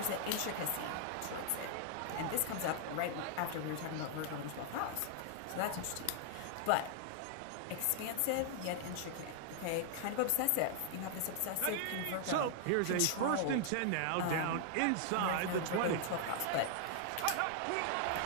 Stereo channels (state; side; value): different; both; correlation 0.00